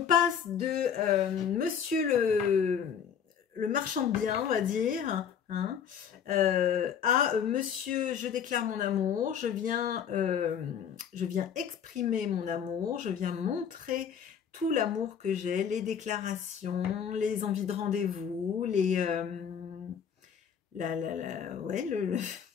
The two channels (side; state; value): right; quieter; 7.9 dB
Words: de monsieur le marchand de biens, on va dire, hein, à monsieur, je déclare mon amour, je viens exprimer mon amour, je viens montrer tout l'amour que j'ai, les déclarations, les envies de rendez-vous, le